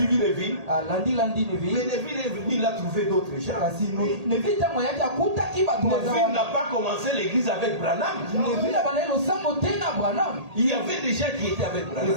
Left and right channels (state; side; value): late; left; 1.8 ms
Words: Neville. Landi Mais Neville. Neville est venu, il a trouvé d'autres gens. Kasi Neville tango yaki akutaki bato Neville n'a pas commencé l'église avec Branham. Neville abandaki losambo te na Branham. Il y avait des gens qui étaient avec Branham.